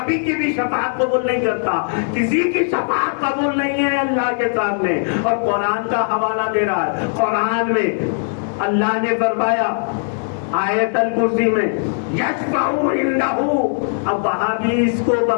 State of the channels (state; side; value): silent; right; 57 dB below the other